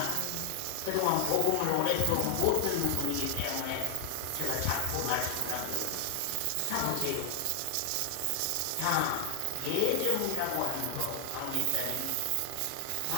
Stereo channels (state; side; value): different; both; correlation 0.00